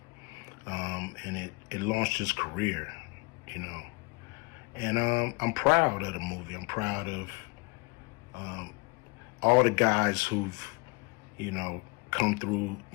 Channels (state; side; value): quieter; right; 28.1 dB